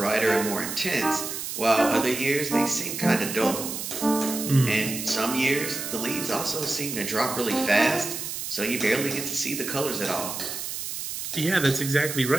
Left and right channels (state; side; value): noise; right; hiss, 6 dB below the sound